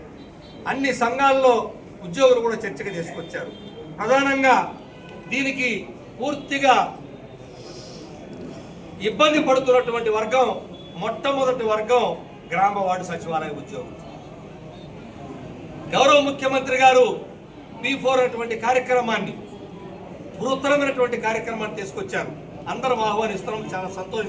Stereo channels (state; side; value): identical; both; correlation 1.00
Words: అన్ని సంఘాల్లో ఉద్యోగులు కూడా చర్చకు తీసుకొచ్చారు. ప్రధానంగా దీనికి పూర్తిగా ఇబ్బంది పడుతున్నటువంటి వర్గం మొట్టమొదటి వర్గం గ్రామ వార్డు సచివాలయ ఉద్యోగులు. గౌరవ ముఖ్యమంత్రి గారు P4 అటువంటి కార్యక్రమాన్ని బృహత్తరమైనటువంటి కార్యక్రమాన్ని తీసుకొచ్చారు. అందరం ఆహ్వానిస్తున్నాం, చాలా